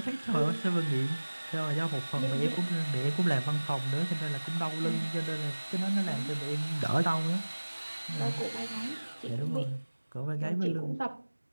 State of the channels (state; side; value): inverted; both; correlation -1.00